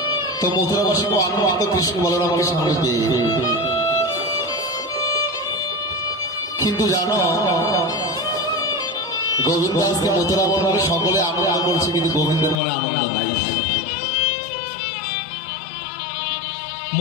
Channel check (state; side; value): drops out; right; at 12.6 s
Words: তো মথুরাবাসী আনন্দ কৃষ্ণ বলরামকে সামনে পেয়ে কিন্তু জানো গোবিন্দ আজকে মথুরা বনে সকলে আনন্দ করছে, কিন্তু গোবিন্দের মনে আনন্দ নাই।